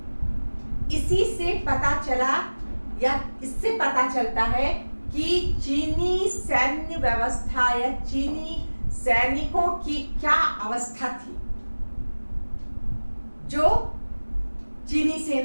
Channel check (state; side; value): inverted; both; correlation -1.00